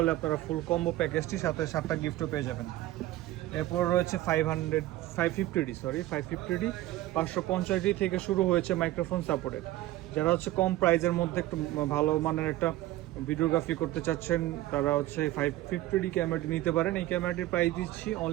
আপনারা ফুল কম্বো প্যাকেজটি সাথে 7টা গিফটও পেয়ে যাবেন। এরপর রয়েছে 550D 550D থেকে শুরু হয়েছে মাইক্রোফোন সাপোর্টেড। যারা হচ্ছে কম প্রাইজের মধ্যে একটু ভালো মানের একটা ভিডিওগ্রাফি করতে চাচ্ছেন তারা হচ্ছে 550D ক্যামেরাটি নিতে পারেন। এই ক্যামেরাটির প্রাইস দিচ্ছি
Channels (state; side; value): quieter; left; 15.9 dB